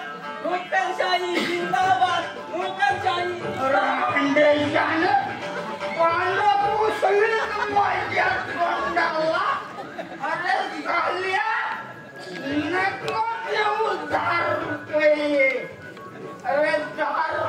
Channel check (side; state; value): both; identical; correlation 1.00